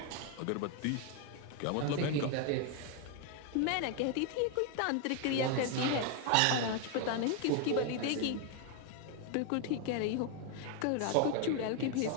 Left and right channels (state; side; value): different; both; correlation 0.01